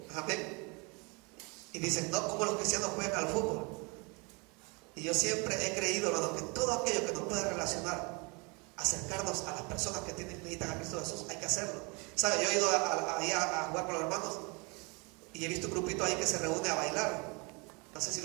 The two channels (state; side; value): quieter; left; 30.1 dB